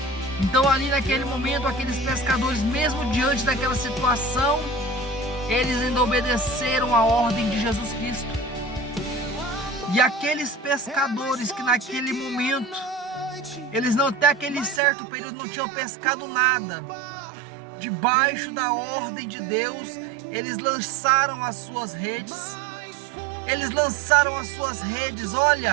Então ali naquele momento, aqueles pescadores, mesmo diante daquela situação, eles ainda obedeceram a ordem de Jesus Cristo. E aqueles pescadores que naquele momento, eles não, até aquele certo período, não tinham pescado nada, debaixo da ordem de Deus, eles lançaram as suas redes. Eles lançaram as suas redes.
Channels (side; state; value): left; drops out; at 14.8 s